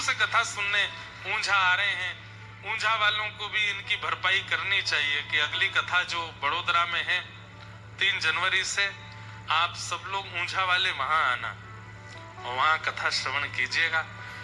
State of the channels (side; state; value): both; identical; correlation 1.00